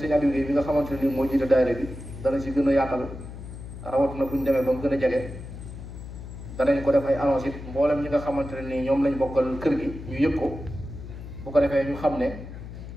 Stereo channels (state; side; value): noise; left; hum, 11 dB below the sound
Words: Aliou bi nga xamante ne nii moo jiite daayira bi dana ci gën a yaatal rawatina bu ñu demee ba mu gën a jege danañ ko def ay annonce it mboolem ñi nga xamante ne nii ñoom lañ bokkal kër gi ñu yëg ko bu ko defee ñu xam ne